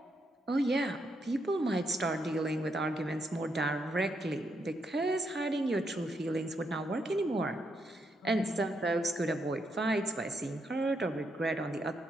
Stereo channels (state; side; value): normal; both; correlation 0.79